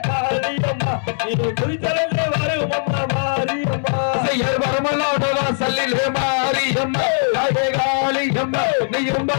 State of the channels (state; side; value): silent; right; digital silence